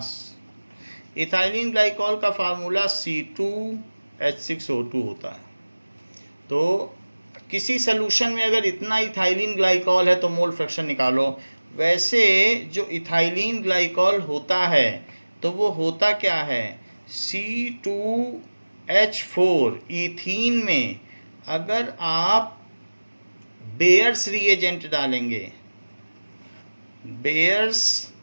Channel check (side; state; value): both; inverted; correlation -1.00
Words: Ethylene glycol का formula C2H6O2 होता है। तो किसी solution में अगर इतना ethylene glycol है तो मोल फ्रैक्शन निकालो। वैसे जो इथाइलिन ग्लाइकॉल होता है तो वो होता क्या है, C2H4 ईथीन में अगर आप बेयर्स रिएजेंट डालेंगे, bears